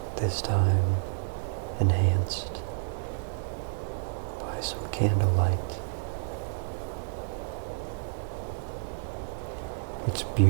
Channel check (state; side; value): silent; left; digital silence